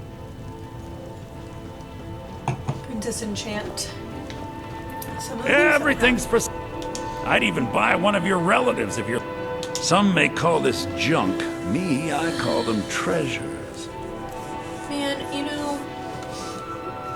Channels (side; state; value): both; identical; correlation 1.00